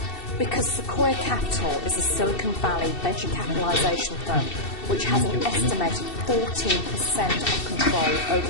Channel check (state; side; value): late; right; 2.7 ms